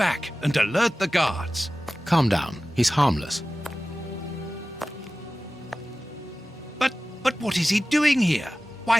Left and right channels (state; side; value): normal; both; correlation 0.96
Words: and alert the guards. Calm down. He's harmless. But what is he doing here? Why